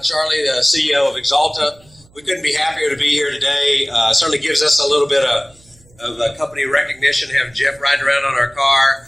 Charlie, the CEO of Exalta. We couldn't be happier to be here today. Certainly gives us a little bit of company recognition to have Jeff riding around on our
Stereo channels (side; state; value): right; noise; hum, 29 dB below the sound